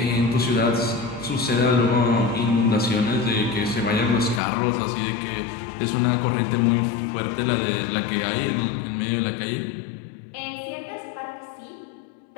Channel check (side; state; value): right; drops out; at 4.4 s